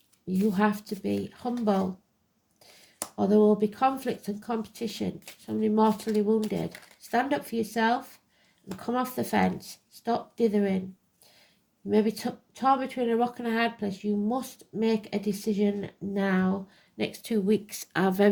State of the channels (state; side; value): identical; both; correlation 1.00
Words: you have to be humble, or there will be conflict and competition. Somebody mortally wounded. Stand up for yourself and come off the fence. Stop dithering. You may be torn between a rock and a hard place. You must make a decision now. Next 2 weeks are